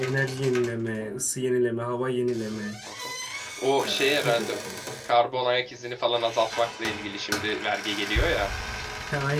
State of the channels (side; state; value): both; identical; correlation 1.00